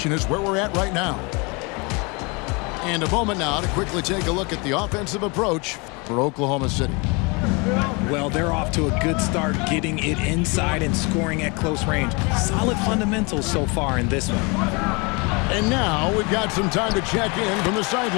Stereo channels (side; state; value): right; quieter; 29.5 dB